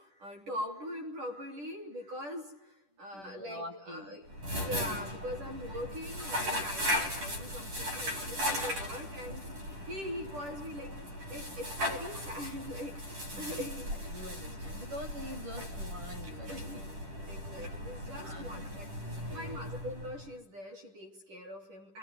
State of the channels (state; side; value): late; left; 10 ms